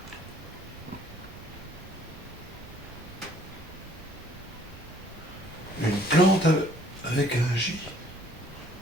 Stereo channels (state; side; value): normal; both; correlation 0.59